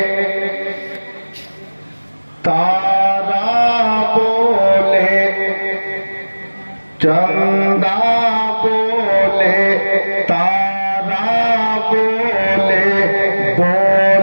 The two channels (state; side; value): inverted; both; correlation -1.00